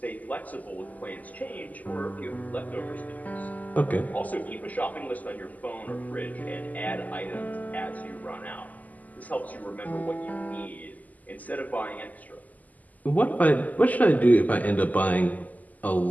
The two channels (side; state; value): right; late; 0.079 ms